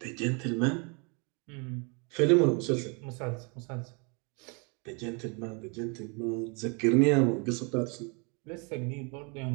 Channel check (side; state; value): left; quieter; 33.3 dB